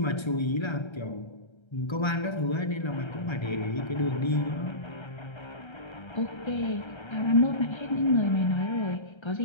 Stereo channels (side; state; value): right; late; 1.3 ms